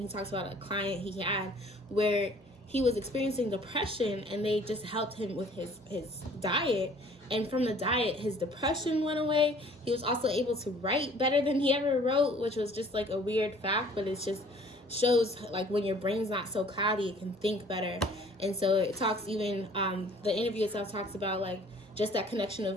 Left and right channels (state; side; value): normal; both; correlation 0.54